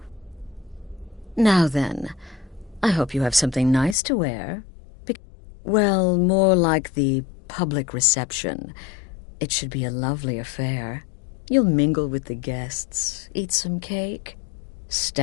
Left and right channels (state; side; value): drops out; right; at 4.0 s